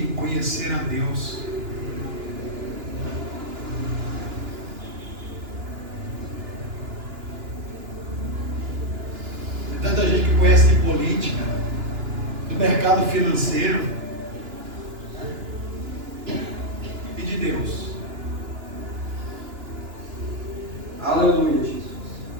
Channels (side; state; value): left; late; 2.9 ms